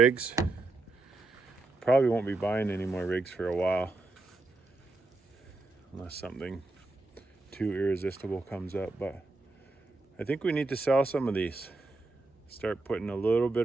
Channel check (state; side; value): quieter; left; 3.2 dB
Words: Probably won't be buying any more rigs for a while, unless something too irresistible comes up. But I think we need to sell some of these. Start putting a little bit